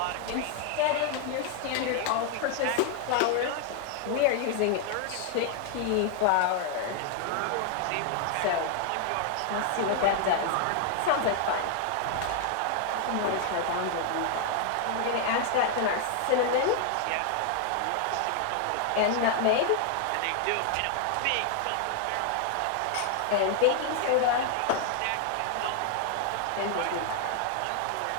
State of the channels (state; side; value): different; both; correlation 0.00